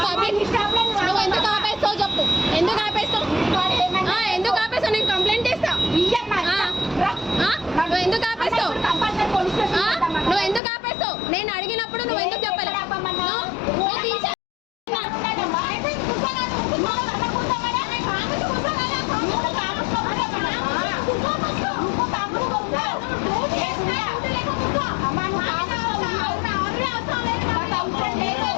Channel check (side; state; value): right; drops out; at 10.6 s